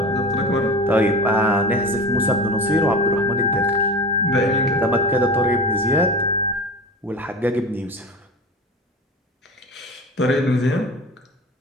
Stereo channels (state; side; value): normal; both; correlation 0.32